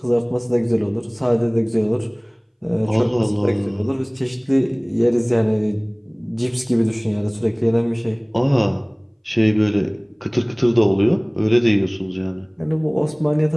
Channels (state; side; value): identical; both; correlation 1.00